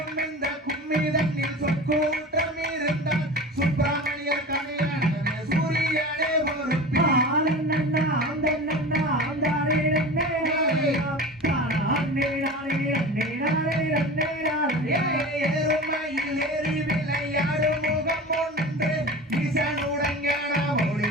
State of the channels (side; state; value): both; normal; correlation 0.33